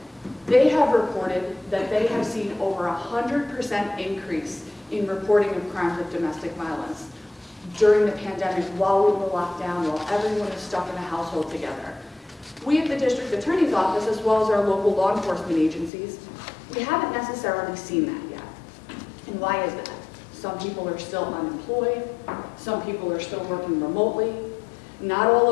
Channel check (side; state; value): right; drops out; at 15.9 s